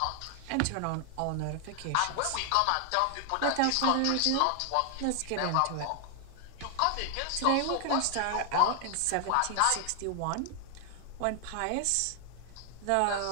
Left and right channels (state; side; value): different; both; correlation 0.00